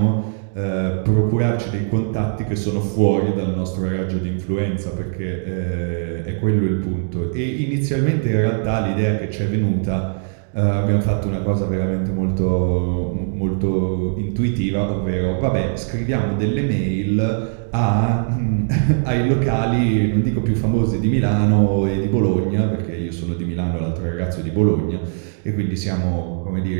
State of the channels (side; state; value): left; silent; digital silence